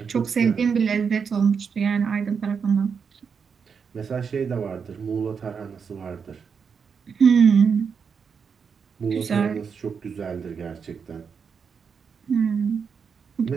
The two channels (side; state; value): left; quieter; 6.2 dB